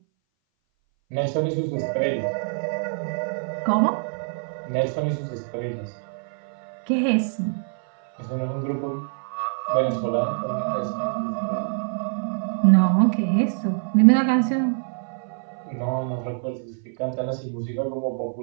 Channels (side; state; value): left; silent; 59 dB below the other